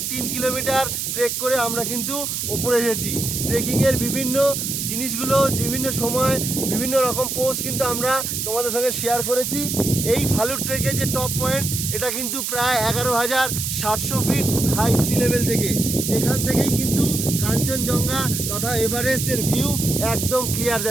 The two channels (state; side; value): noise; right; hiss, 2 dB below the sound